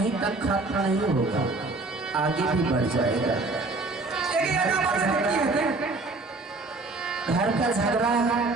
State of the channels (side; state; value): left; quieter; 3.4 dB